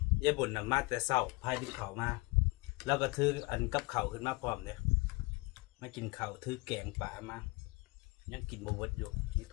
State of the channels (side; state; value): right; quieter; 25.8 dB